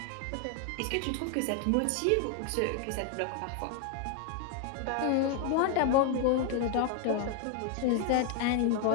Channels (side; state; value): both; different; correlation 0.01